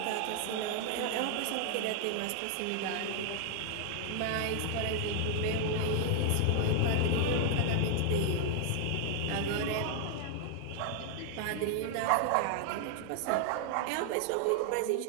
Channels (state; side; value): different; both; correlation 0.00